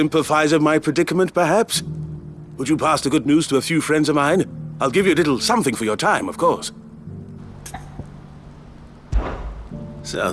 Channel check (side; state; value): both; identical; correlation 1.00